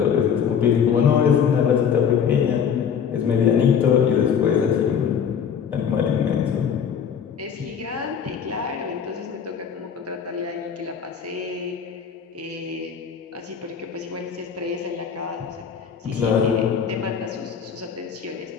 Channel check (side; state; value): right; quieter; 7.5 dB